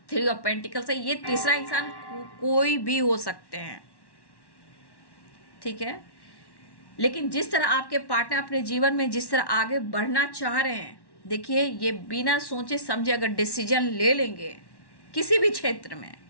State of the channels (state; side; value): late; right; 1.1 ms